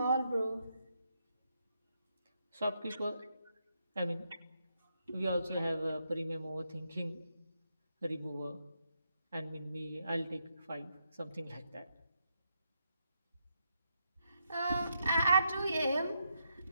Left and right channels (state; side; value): inverted; both; correlation -0.80